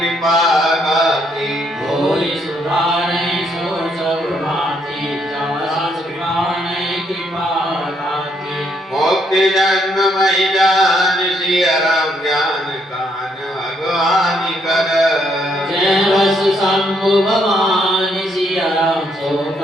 गाती। मोरि सुधारे सो सब भांति जस कृपा नहीं कृपा गाती। मोक्ति जन्म मही जान सिया राम ज्ञान कान भगवान कर। जय बस शंभु भवानी सिया राम सो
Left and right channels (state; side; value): normal; both; correlation 0.73